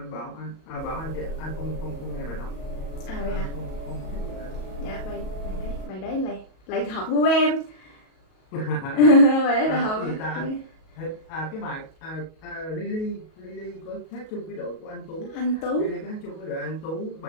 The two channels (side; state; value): right; late; 37 ms